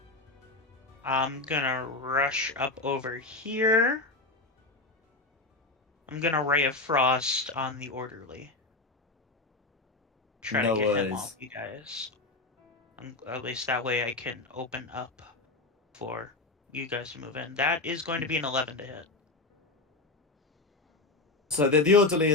I'm gonna rush up over here. I'm gonna Ray of Frost on the orderly. Try to No get him worries. off you guys. At least that way I can open up for you guys to move in. That is going to be an 11 to hit. So the orderly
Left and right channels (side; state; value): right; quieter; 3.2 dB